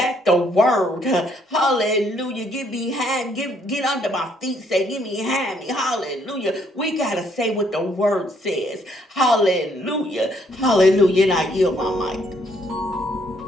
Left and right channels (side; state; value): both; normal; correlation 0.69